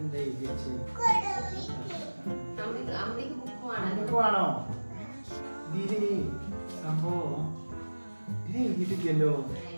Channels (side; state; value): both; inverted; correlation -1.00